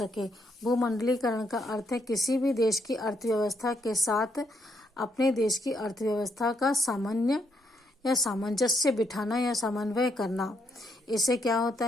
भूमंडलीकरण का अर्थ है किसी भी देश की अर्थव्यवस्था के साथ अपने देश की अर्थव्यवस्था का सामान्य या सामंजस्य बिठाना या समन्वय करना। इससे क्या होता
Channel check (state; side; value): normal; both; correlation 0.76